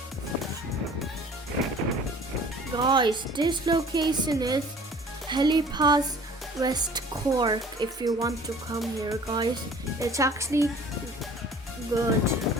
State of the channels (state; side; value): normal; both; correlation 0.49